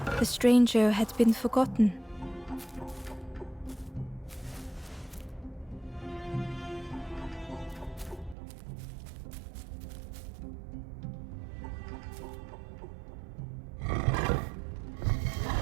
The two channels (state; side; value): drops out; left; at 8.3 s